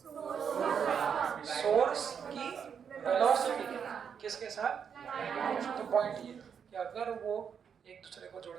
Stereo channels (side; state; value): left; quieter; 7.2 dB